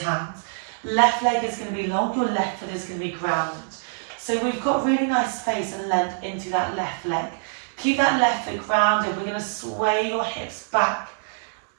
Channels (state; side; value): silent; left; digital silence